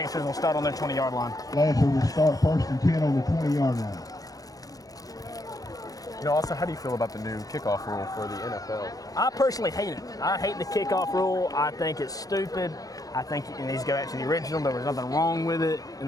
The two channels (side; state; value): right; late; 0.17 ms